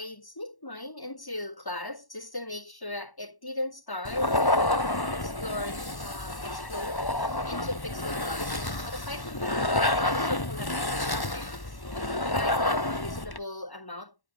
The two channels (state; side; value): late; right; 1.1 ms